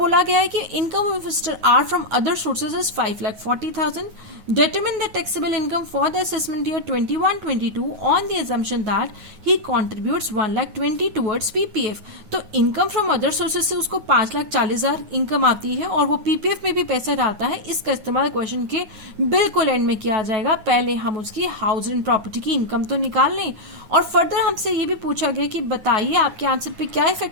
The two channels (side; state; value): left; late; 9.4 ms